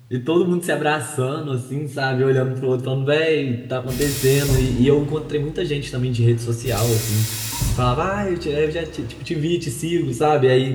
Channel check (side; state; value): both; identical; correlation 1.00